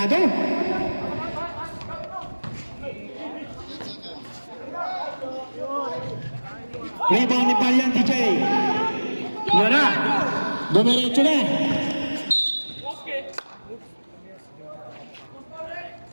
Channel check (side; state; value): both; inverted; correlation -1.00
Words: Rebound ni Valiente J. Yun na. Dumiretso na.